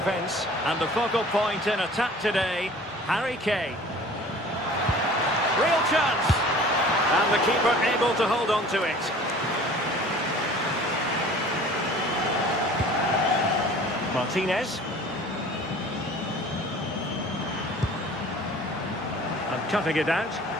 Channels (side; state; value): both; normal; correlation 0.46